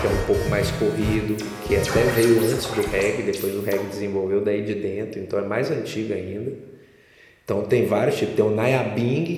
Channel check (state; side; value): identical; both; correlation 1.00